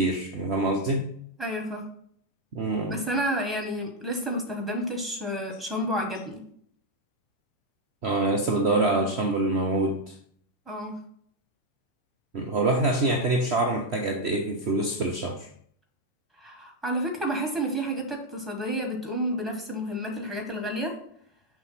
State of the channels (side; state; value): both; normal; correlation 0.03